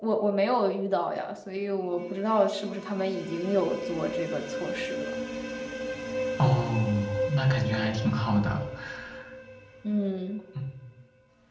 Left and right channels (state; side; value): identical; both; correlation 1.00